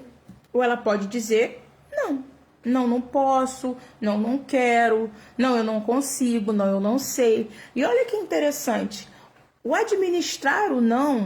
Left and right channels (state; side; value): identical; both; correlation 1.00